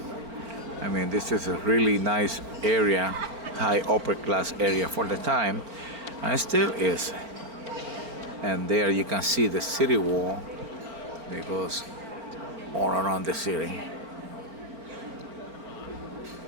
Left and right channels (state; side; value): late; left; 4.4 ms